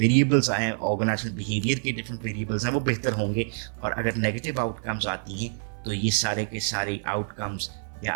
आए हैं, ऑर्गेनाइजेशनल बिहेवियर के डिफरेंट वेरिएबल्स हैं, वो बेहतर होंगे। और अगर नेगेटिव आउटकम्स आती हैं तो ये सारे के सारे आउटकम्स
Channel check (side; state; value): left; silent; 56 dB below the other